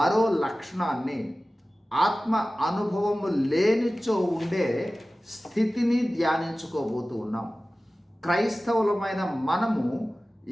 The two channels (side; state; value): both; normal; correlation 0.97